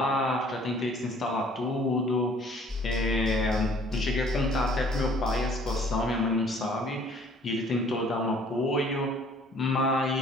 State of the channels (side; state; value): both; normal; correlation 0.56